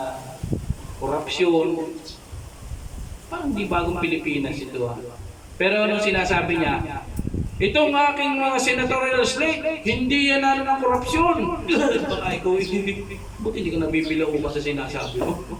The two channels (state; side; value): identical; both; correlation 1.00